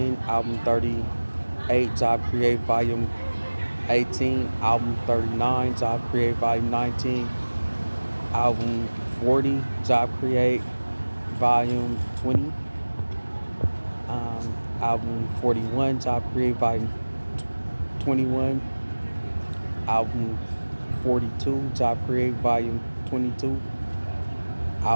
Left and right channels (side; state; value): both; inverted; correlation -1.00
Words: album 38, Job Create, volume 18, album 39, Job Create, volume 19, album 40, Job Create, volume 20, album 41, Job Create, volume 21, album 42, Job Create Volume 22.